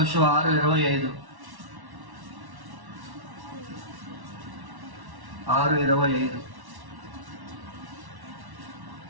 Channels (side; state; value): left; late; 1.1 ms